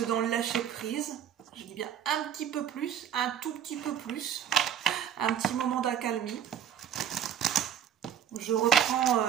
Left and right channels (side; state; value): left; quieter; 9.5 dB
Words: dans le lâcher prise. Je dis bien un petit peu plus, un tout petit peu plus, un petit moment d'accalmie. Je